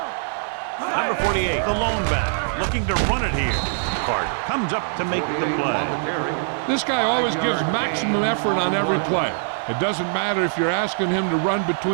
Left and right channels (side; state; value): left; silent; digital silence